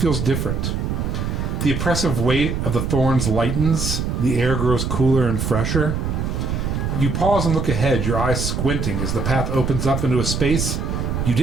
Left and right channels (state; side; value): noise; right; rumble, 1 dB below the sound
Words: different. The oppressive weight of the thorns lightens, the air grows cooler and fresher. You pause and look ahead, your eyes squinting as the path opens up into a space you